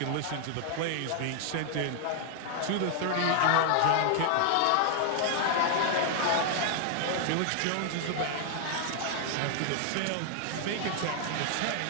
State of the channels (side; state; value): both; different; correlation 0.00